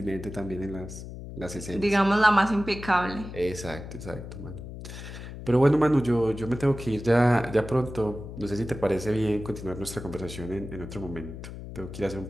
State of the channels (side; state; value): left; noise; hum, 11 dB below the sound